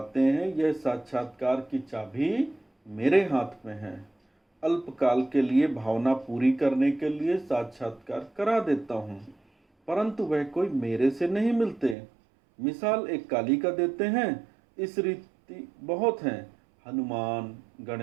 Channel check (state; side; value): drops out; left; at 12.0 s